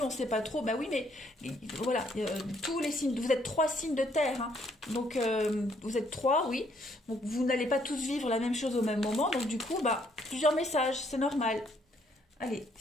on ne sait pas trop. Bah oui, mais voilà, tous les signes, vous êtes 3 signes de terre. Hein, donc vous êtes 3, oui. Donc vous n'allez pas tous vivre la même chose au même moment. Donc du coup, bah, plusieurs messages, c'est normal. Allez,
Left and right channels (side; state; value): both; normal; correlation 0.68